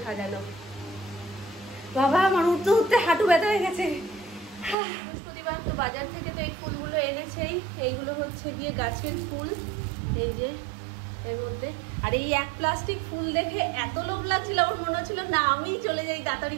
সাজানো। বাবা আমার উঠতে উঠতে হাঁটু ব্যথা হয়ে গেছে। বৃহস্পতিবার তো বাজার থেকে তো এই ফুলগুলো এনেছেই, এইগুলো হচ্ছে গিয়ে গাছের ফুল, এই যে এর মধ্যে। আর এই এক প্লাস্টিক ফুল দেখে এত লোভ লাগছিল, আমার মনে হচ্ছিল না আমি চলে যাই তাড়াতাড়ি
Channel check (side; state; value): left; drops out; at 4.8 s